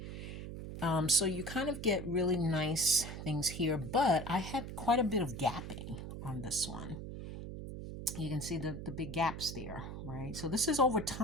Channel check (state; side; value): noise; right; hum, 8 dB below the sound